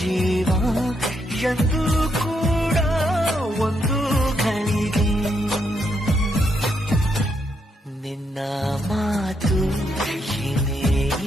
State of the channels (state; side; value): normal; both; correlation 0.78